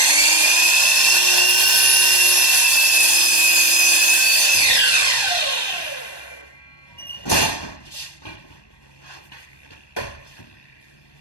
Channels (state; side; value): late; right; 1.2 ms